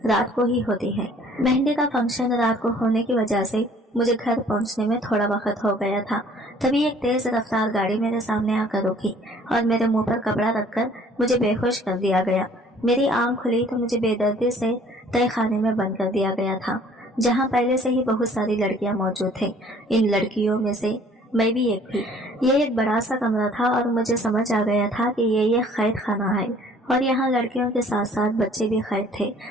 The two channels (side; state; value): both; normal; correlation 0.55